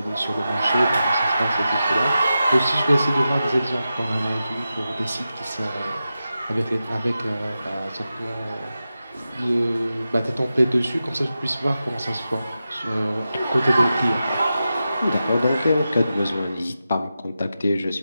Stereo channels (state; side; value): inverted; both; correlation -0.91